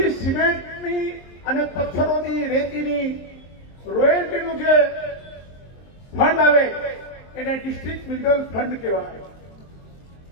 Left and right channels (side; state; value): right; late; 23 ms